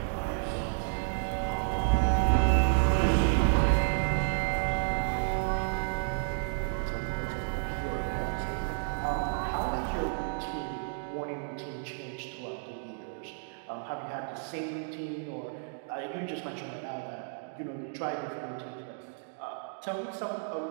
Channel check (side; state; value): left; silent; digital silence